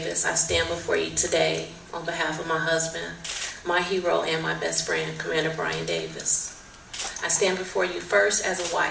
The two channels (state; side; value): identical; both; correlation 1.00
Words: I stand before you today on behalf of my husband, my hero, and my best friend, Commander Brian Davis. I stand before you first as a